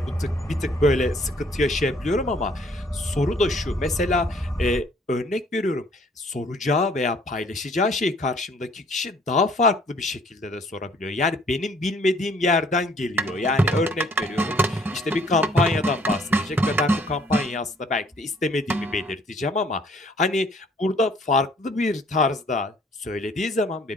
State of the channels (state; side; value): normal; both; correlation 0.60